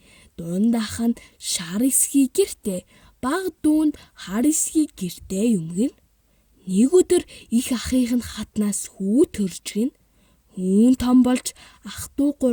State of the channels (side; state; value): both; identical; correlation 1.00